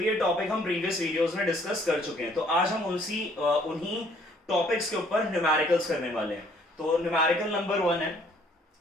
ये टॉपिक हम प्रीवियस वीडियोस में डिस्कस कर चुके हैं। तो आज हम उन्हीं टॉपिक्स के ऊपर न्यूमेरिकल्स करने वाले हैं। तो न्यूमेरिकल नंबर 1 है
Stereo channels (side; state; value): both; normal; correlation 0.62